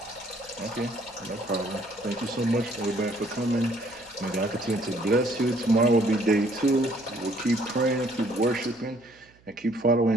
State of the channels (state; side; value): noise; right; hum, 30 dB below the sound